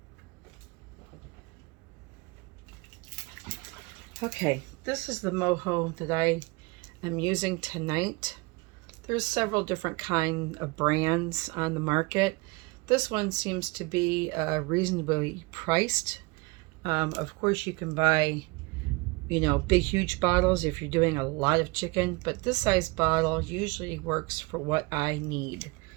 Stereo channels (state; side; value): quieter; left; 25.8 dB